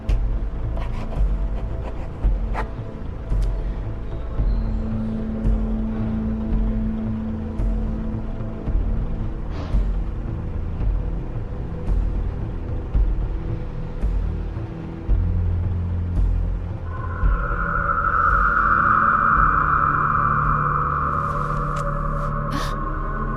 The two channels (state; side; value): identical; both; correlation 1.00